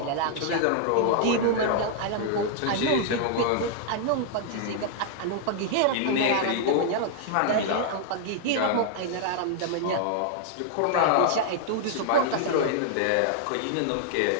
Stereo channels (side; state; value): both; different; correlation -0.01